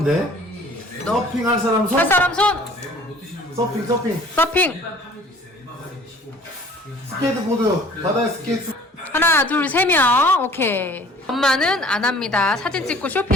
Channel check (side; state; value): both; normal; correlation 0.51